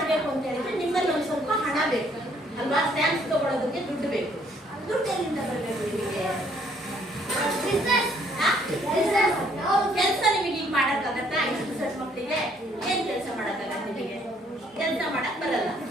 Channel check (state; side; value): normal; both; correlation 0.65